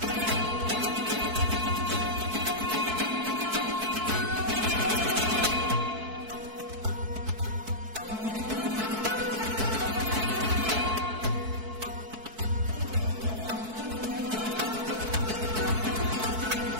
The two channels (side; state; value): left; late; 4.6 ms